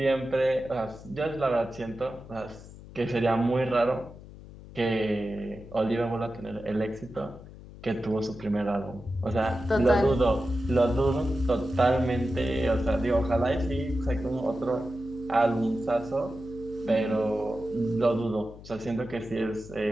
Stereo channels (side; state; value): left; noise; hum, 17 dB below the sound